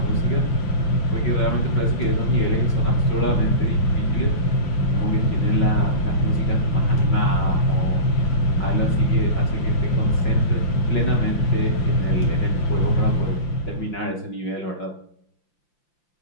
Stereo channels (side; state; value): right; late; 5.8 ms